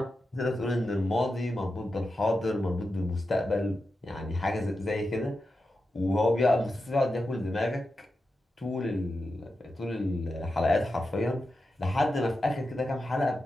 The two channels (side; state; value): both; normal; correlation 0.90